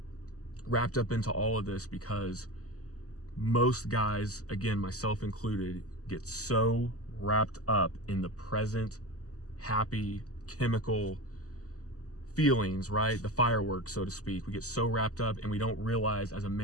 wrapped up into all of this because most guys, again, myself included, get so wrapped up in the present, happy, chemical feelings, right? The fireworks, so to speak. We get so wrapped up and we don't realize, as a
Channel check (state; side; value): late; right; 0.66 ms